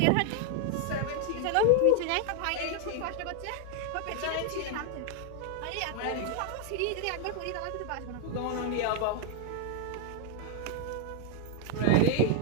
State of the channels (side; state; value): both; different; correlation 0.00